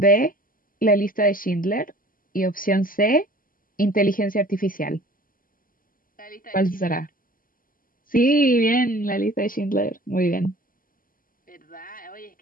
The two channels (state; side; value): late; right; 0.41 ms